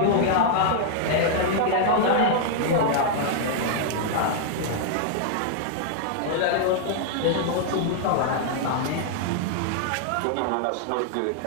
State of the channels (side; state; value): both; different; correlation -0.01